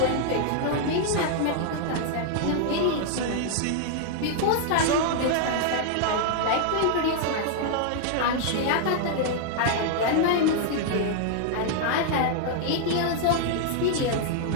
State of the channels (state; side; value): different; both; correlation 0.00